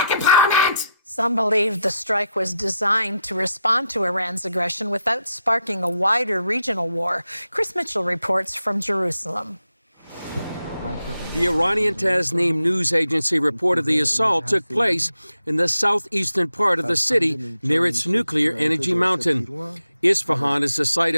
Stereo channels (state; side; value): inverted; both; correlation -0.85